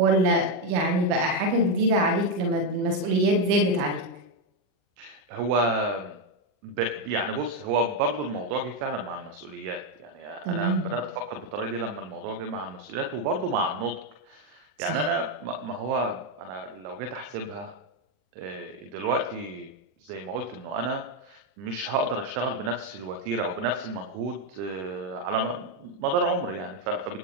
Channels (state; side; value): late; left; 40 ms